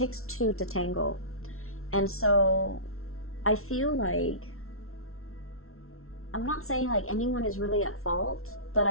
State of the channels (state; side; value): late; right; 0.62 ms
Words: two to tango. And so I feel like I'm not saying like anyone is really at fault, but